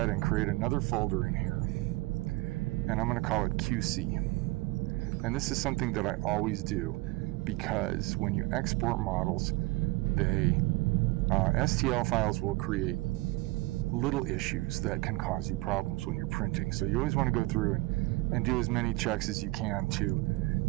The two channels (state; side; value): quieter; left; 22.2 dB